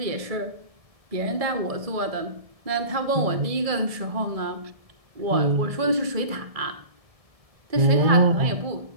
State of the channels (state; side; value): late; left; 1.7 ms